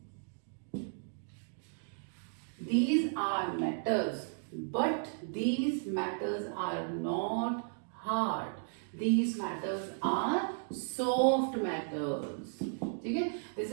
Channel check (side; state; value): left; silent; digital silence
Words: These are metals, but these metals are not hard. These metals are soft metals. Okay? This